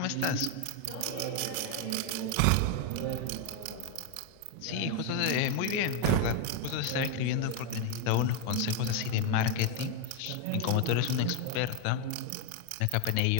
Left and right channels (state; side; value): different; both; correlation 0.01